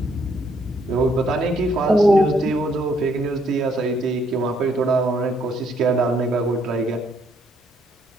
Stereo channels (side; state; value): both; normal; correlation 0.70